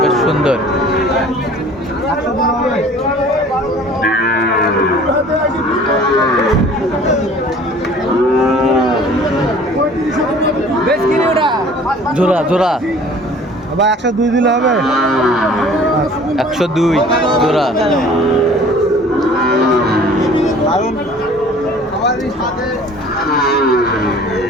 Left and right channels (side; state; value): both; normal; correlation 0.49